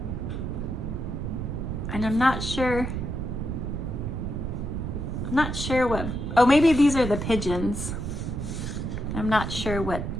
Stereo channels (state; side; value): noise; right; rumble, 3 dB below the sound